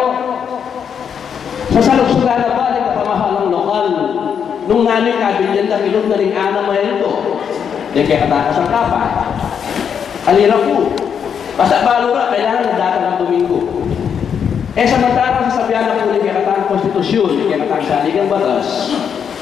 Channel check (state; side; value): quieter; right; 7.5 dB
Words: sa saluksugan na ba ng kapamahalang lokal, nung nanay kabilyan na ilog na rin ana mo ito, yung kaya katakas ang kapa, alira po, basta balura, kailangan na datang ang Domingo. Eh samantarang sasabihan na po ng kaya katang konstitusyon, kaya katang saligang batas,